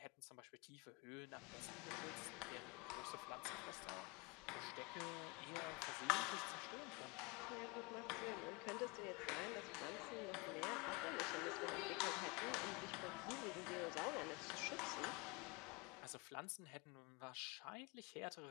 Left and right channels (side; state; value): right; quieter; 27.2 dB